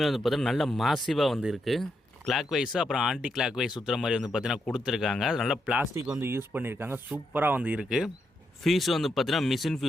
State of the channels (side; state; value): both; normal; correlation 0.82